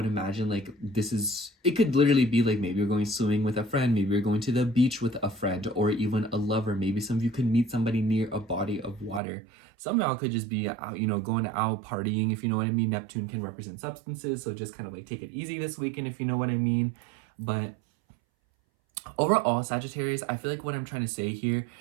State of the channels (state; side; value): drops out; left; at 9.2 s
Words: imagine like it could literally be like maybe you're going swimming with a friend, maybe you're going to the beach with a friend, or even a lover. Maybe some of you could meet somebody near a body of water. Some of y'all could just be out, going out partying, if you know what I mean. Neptune can represent substances, so just kind of like take it easy this weekend, if you know what I mean. But overall, Sagittarius, I feel like what I'm trying to say here